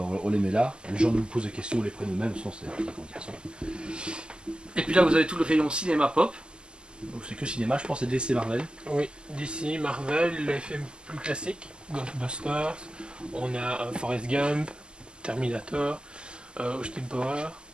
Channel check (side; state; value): left; late; 0.048 ms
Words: on les met là. Les gens nous posent des questions, on les prend nous-mêmes. Et puis là, vous avez tout le rayon cinéma pop. Donc c'est que cinéma, je pense, c'est DC Marvel. Oui, DC, Marvel, les films plus classiques, Ghostbusters, on a Forrest Gump, Terminator, Austin Power,